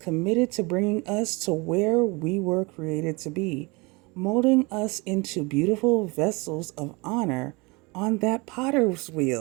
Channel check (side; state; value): left; quieter; 26.7 dB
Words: to bringing us to where we were created to be, molding us into beautiful vessels of honor on that potter's